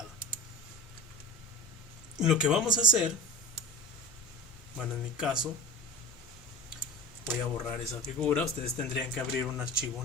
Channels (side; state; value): both; normal; correlation 0.31